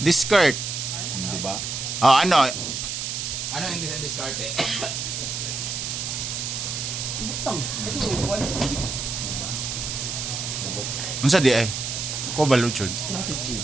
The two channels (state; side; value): noise; right; hiss, 4 dB below the sound